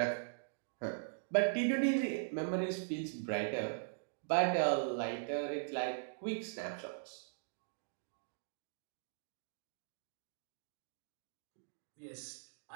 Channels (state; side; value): silent; left; digital silence